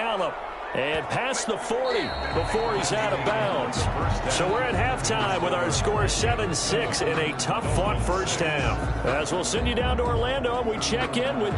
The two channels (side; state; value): both; identical; correlation 1.00